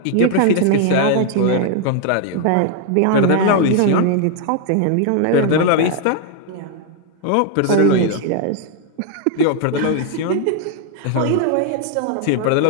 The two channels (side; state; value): both; different; correlation 0.00